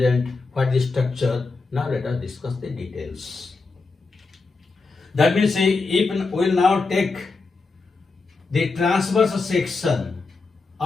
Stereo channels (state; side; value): quieter; right; 4.0 dB